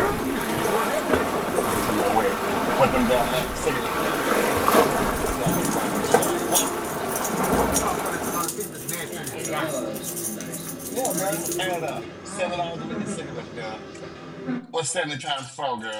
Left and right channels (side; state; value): both; identical; correlation 1.00